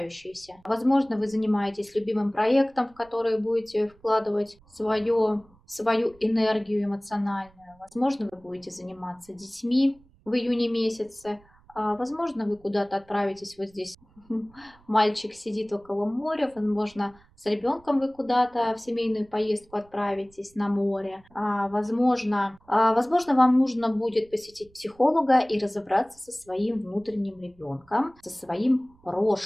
Возможно, вы занимаетесь любимым проектом, в который будете вкладывать свою энергию эмоциональную. Возможно, вы будете заниматься детьми в июне месяце. Возможно, вы куда-то отправитесь вот здесь. Мальчик сидит около моря, возможно, с ребенком вы куда-то в семейную поездку отправитесь на море. Возможно, вам нужно будет посетить психолога и разобраться со своим внутренним ребенком, со своим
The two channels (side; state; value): right; noise; rumble, 29 dB below the sound